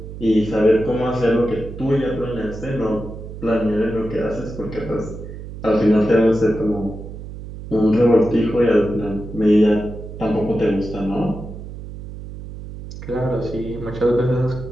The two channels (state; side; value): noise; right; hum, 11 dB below the sound